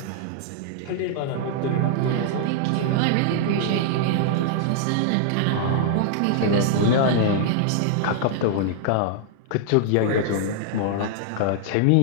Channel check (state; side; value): different; both; correlation -0.01